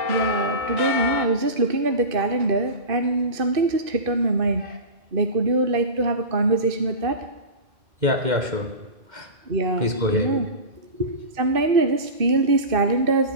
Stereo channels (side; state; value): left; late; 2.5 ms